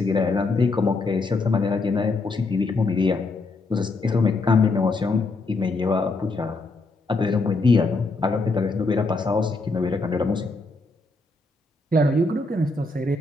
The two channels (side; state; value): right; quieter; 3.4 dB